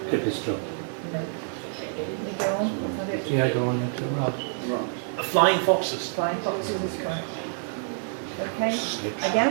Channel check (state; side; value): silent; left; digital silence